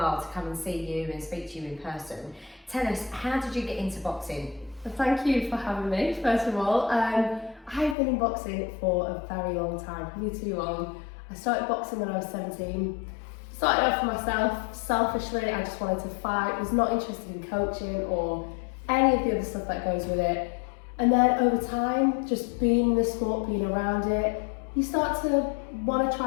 to come and see you and speak to you in person. Tell us, how did you get into boxing? Well, thank you for having me, first of all. I've been in boxing for a very long time, probably too long. I started boxing when I was 17. Started off for myself, selfishly, I just wanted to fight, was not interested in coaching or any of the other stuff that goes with it. And then over time, just being in the sport, being around it, you start to want to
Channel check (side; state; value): right; drops out; at 8.0 s